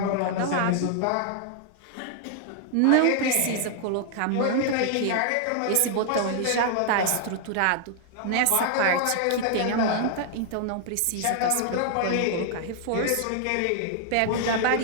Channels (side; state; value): both; different; correlation 0.00